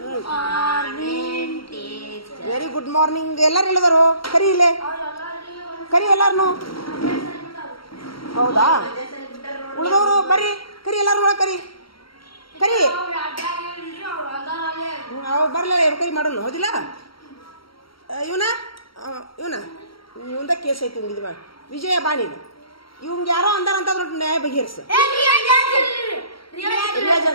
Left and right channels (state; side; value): late; right; 0.74 ms